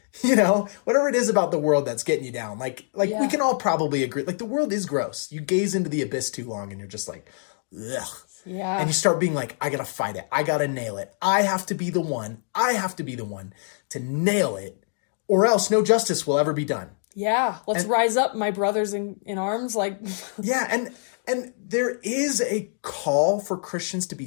You know, whatever it is about the world that's getting you down. Like we can all probably agree. Like, the world is gross. You gaze into the abyss too long and you're just like, ugh. Yeah. And you start being like, I gotta fight it. I gotta nail it. I have to be the one. I have to be the one to nail it, or else no justice will ever be done. Yeah. Let's rise up, my brothers in arms. Like, yeah. And there is a call for Christians to be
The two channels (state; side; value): silent; right; digital silence